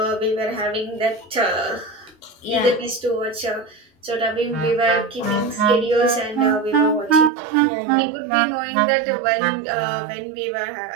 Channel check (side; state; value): left; drops out; at 7.3 s